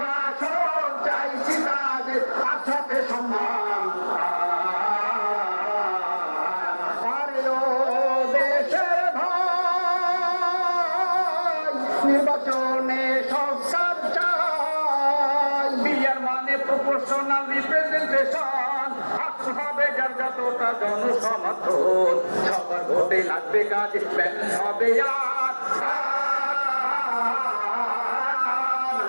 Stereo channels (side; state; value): both; inverted; correlation -1.00